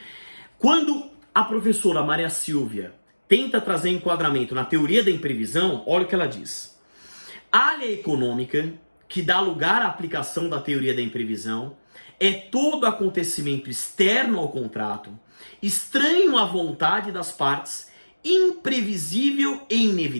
Quando a professora Maria Silvia tenta trazer enquadramento na teoria da imprevisão, olha o que ela diz. A área econômica, que dá lugar à aplicação da teoria da imprevisão, é todo acontecimento externo ao contrato, estranho à vontade das partes, imprevisível e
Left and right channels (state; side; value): inverted; both; correlation -1.00